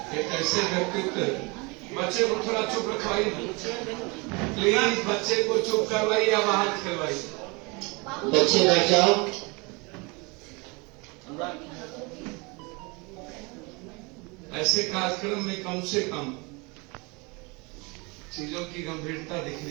एक ऐसे व्यक्तित्व, बच्चे को थोड़ा चुप रखवाइए, प्लीज बच्चे को चुप करवाइए या बाहर खिलवाइए। बच्चे बैठ जाओ। ऐसे कार्यक्रम में कम से कम चीजों की गंभीरता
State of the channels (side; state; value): left; quieter; 28.2 dB